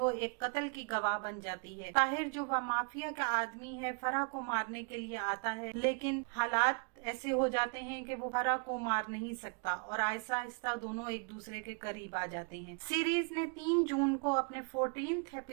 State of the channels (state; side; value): quieter; left; 36.5 dB